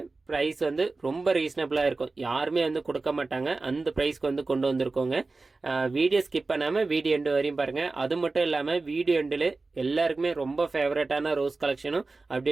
ப்ரைஸ் வந்து ரொம்ப ரீசனபிளாக இருக்கும், யாருமே வந்து கொடுக்க மாட்டாங்க, அந்த ப்ரைஸ்க்கு வந்து கொண்டு வந்திருக்கோங்க. வீடியோ ஸ்கிப் பண்ணாமல் வீடியோ எண்டு வரையும் பாருங்கள். அது மட்டும் இல்லாமல் வீடியோ எண்டில் எல்லாருக்குமே ரொம்ப ஃபேவரட்டான ரோஸ் கலெக்ஷனும்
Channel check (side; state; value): left; quieter; 3.6 dB